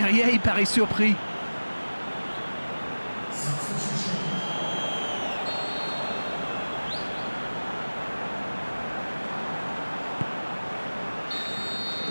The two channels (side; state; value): both; inverted; correlation -1.00